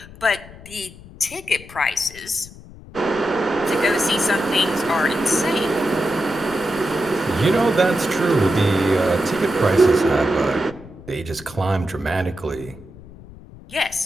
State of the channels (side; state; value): left; noise; rumble, 18 dB below the sound